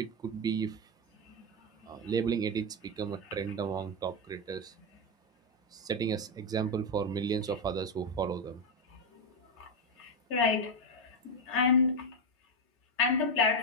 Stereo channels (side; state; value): both; normal; correlation 0.06